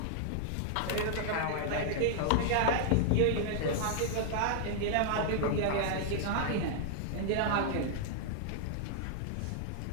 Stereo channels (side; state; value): both; different; correlation -0.01